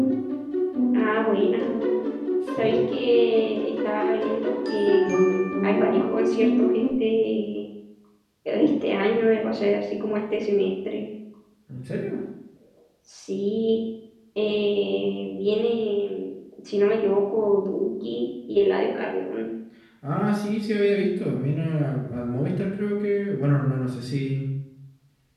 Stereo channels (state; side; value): identical; both; correlation 1.00